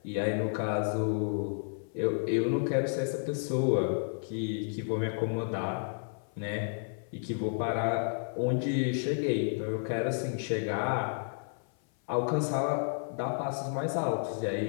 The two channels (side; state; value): right; silent; 56 dB below the other